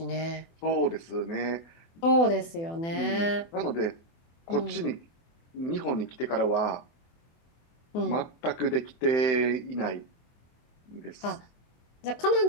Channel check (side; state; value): right; late; 24 ms